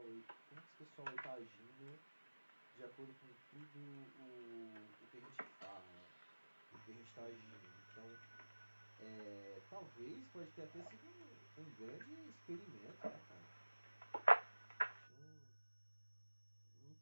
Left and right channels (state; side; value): inverted; both; correlation -1.00